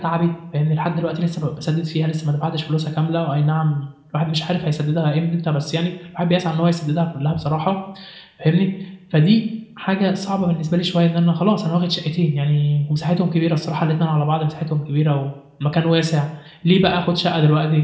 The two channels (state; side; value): identical; both; correlation 1.00